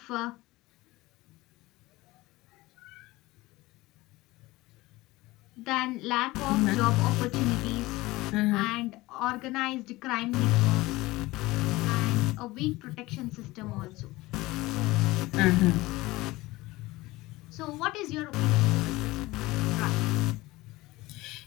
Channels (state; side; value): quieter; right; 19.8 dB